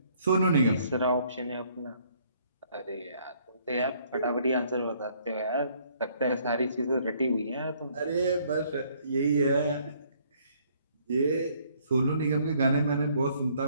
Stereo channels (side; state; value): both; inverted; correlation -0.64